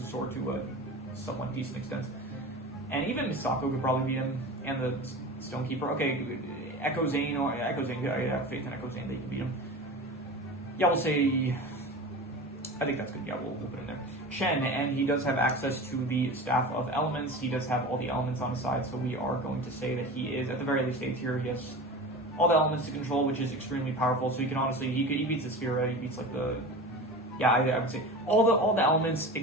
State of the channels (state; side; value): normal; both; correlation 0.32